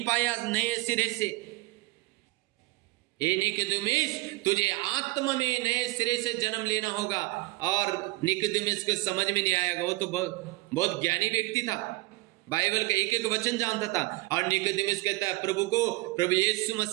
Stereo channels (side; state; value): left; quieter; 21.6 dB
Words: पाया नए सिरे से। ए निकोदेमुस, तुझे आत्मा में नए सिरे से जन्म लेना होगा। और निकोदेमुस को समझ में नहीं आएगा, वो तो बहुत ज्ञानी व्यक्ति था, बाइबल का एक एक वचन जानता था। और निकोदेमुस कहता है प्रभु को, प्रभु यीशु